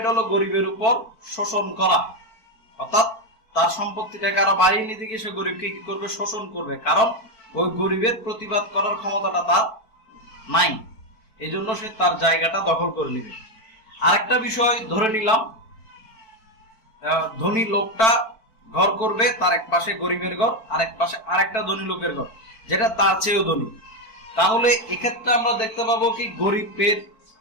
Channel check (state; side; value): late; right; 4.5 ms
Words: হলো গরিবের উপর শোষণ করা, অর্থাৎ তার সম্পত্তিটাকে আরো বাড়িয়ে নিতে গিয়ে সে গরিবকে কি করবে, শোষণ করবে। কারণ ওই গরিবের প্রতিবাদ করার ক্ষমতাটা তার নাই, এই জন্য সে তার জায়গাটা দখল করে নিবে। আরেকটা বিষয় ধরে নিলাম, ধনী লোকটা ঘর করবে, তার এক পাশে গরিবের ঘর, আর এক পাশে আরেকটা ধনী লোকের ঘর যেটা তার চেয়েও ধনী। তাহলে এক্ষেত্রে আমরা দেখতে পাবো কি, গরিবের